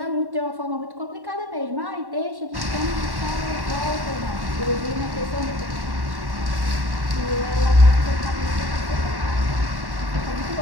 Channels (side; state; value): left; late; 1.1 ms